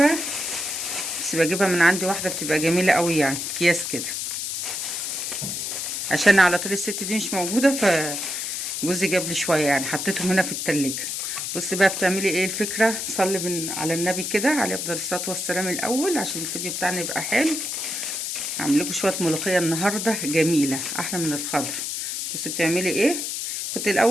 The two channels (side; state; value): left; noise; hiss, 3 dB below the sound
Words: بس بجيبها من عندي واحدة بتبقى جميلة قوي، يعني اكياس كده، عشان على طول الست دي مش موجودة، فجوزي جاب لي شوية، يعني حطيتهم هنا في التلاجة. بصي بقى بتعملي ايه الفكرة. صلي على النبي كده عليه افضل الصلاة والسلام الاول، عشان الفيديو بتاعنا يبقى حلو. هعمل لكم شويه ملوخيه النهارده جميله احلى من الخضر. بصي بتعملي ايه. كنت